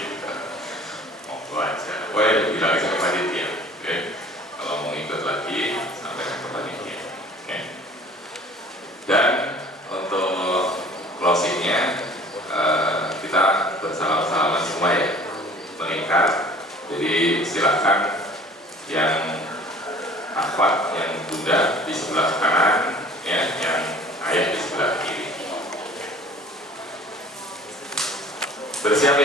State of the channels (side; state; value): both; normal; correlation 0.48